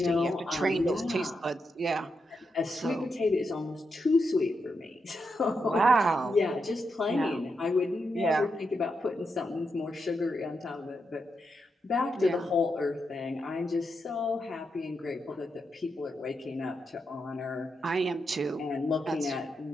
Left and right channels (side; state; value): both; normal; correlation 0.84